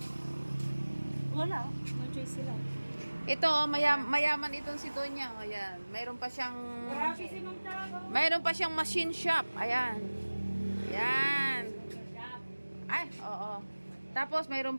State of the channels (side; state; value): both; inverted; correlation -1.00